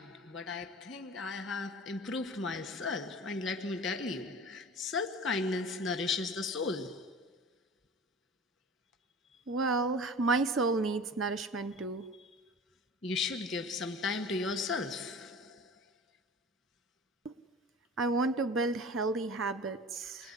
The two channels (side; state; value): both; normal; correlation 0.39